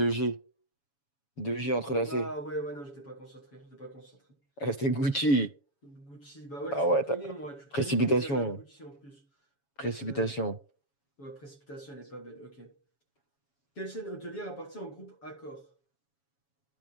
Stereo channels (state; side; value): late; right; 7.2 ms